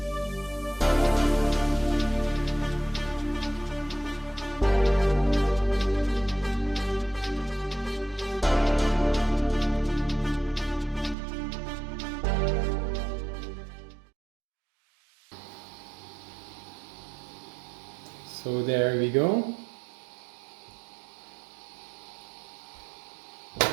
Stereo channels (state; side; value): drops out; left; at 11.2 s